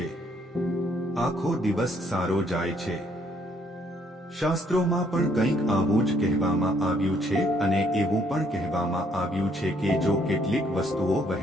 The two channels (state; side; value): normal; both; correlation 0.67